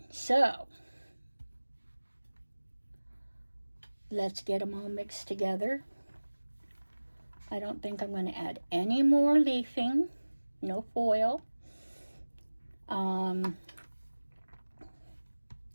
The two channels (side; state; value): both; inverted; correlation -1.00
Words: so let's get them all mixed together. I don't think I'm going to add any more leafing. No foil.